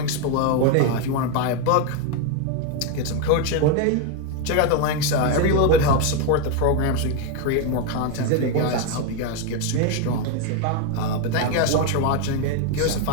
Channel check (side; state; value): both; different; correlation 0.02